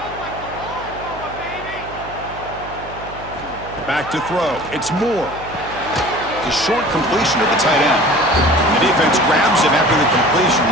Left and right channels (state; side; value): noise; right; hum, 16 dB below the sound